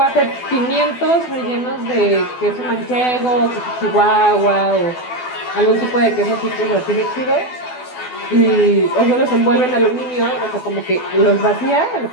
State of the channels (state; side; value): late; right; 12 ms